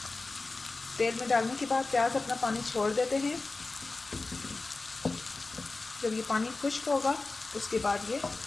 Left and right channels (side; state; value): right; quieter; 3.5 dB